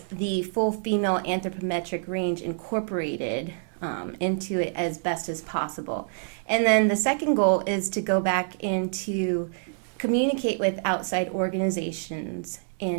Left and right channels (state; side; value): silent; left; digital silence